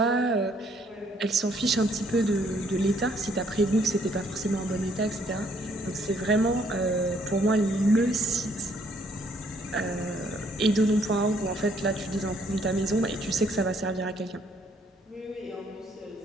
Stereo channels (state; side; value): normal; both; correlation 0.66